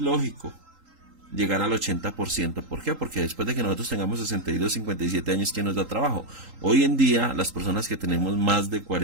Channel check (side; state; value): left; late; 3.8 ms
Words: llegar al 80%. ¿Por qué? Porque después de que nosotros tengamos 62, 57 años, ¿quién nos da trabajo? Hoy en día, las personas que tenemos más de